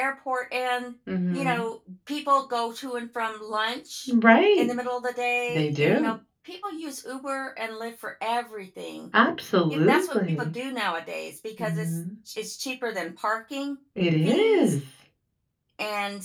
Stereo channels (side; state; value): both; identical; correlation 1.00